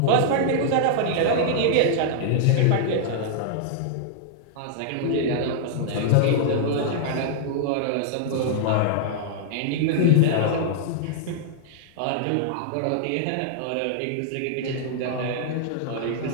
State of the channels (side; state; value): both; different; correlation -0.01